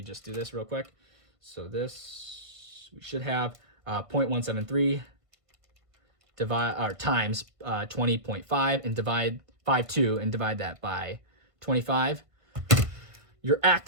just do this real quick. So this, we should have 0.173 times 20.5 and divide 5.2 and divide that by 25. Your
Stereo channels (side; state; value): left; late; 1.5 ms